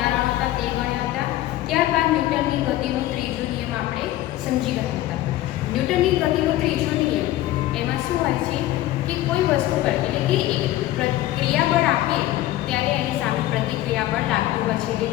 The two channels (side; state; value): right; quieter; 15.0 dB